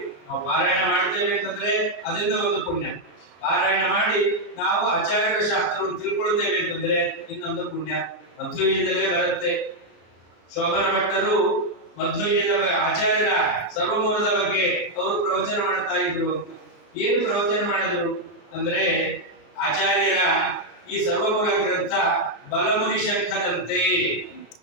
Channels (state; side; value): late; right; 33 ms